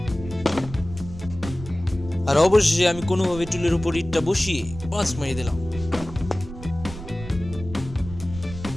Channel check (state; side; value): noise; right; rumble, 12 dB below the sound